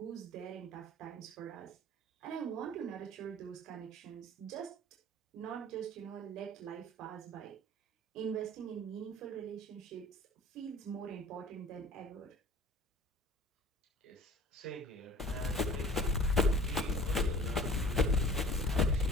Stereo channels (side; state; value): both; normal; correlation 0.45